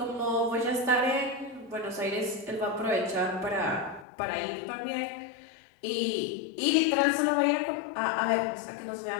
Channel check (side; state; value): right; drops out; at 4.0 s